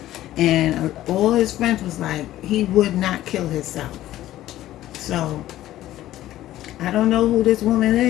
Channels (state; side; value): quieter; right; 14.2 dB